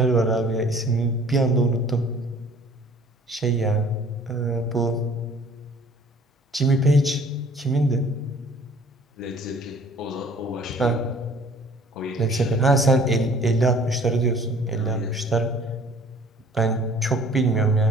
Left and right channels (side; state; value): both; normal; correlation 0.52